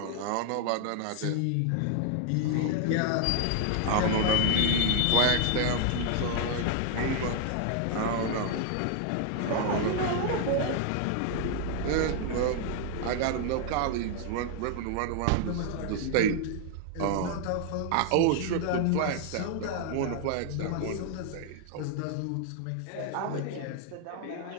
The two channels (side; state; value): both; different; correlation 0.00